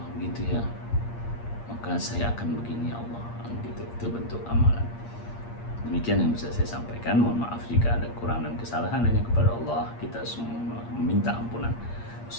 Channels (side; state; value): right; late; 8.6 ms